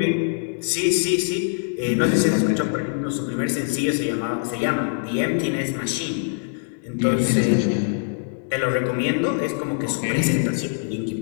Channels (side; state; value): right; silent; digital silence